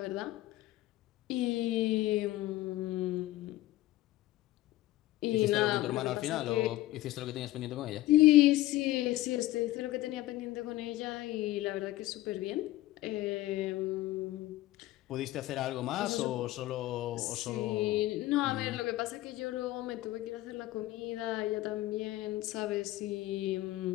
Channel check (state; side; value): quieter; right; 16.5 dB